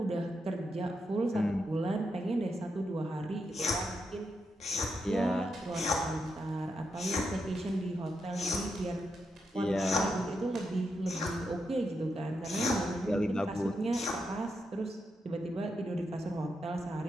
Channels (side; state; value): both; normal; correlation 0.83